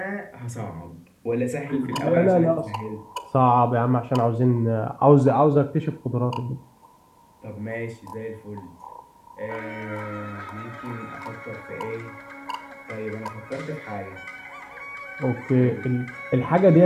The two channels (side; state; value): both; identical; correlation 1.00